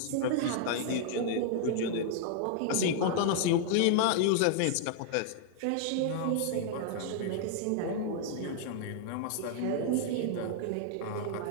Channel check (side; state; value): both; different; correlation 0.00